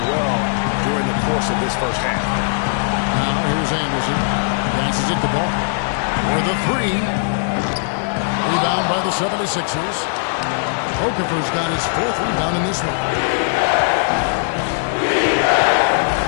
well during the course of this first half. Now here's Anderson. Passes it the ball. For the 3. Rebound by the 76ers. Okafor's got his 4th rebound in this one.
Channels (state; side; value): silent; right; digital silence